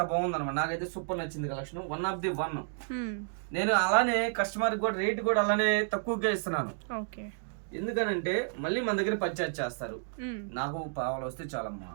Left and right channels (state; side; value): silent; left; digital silence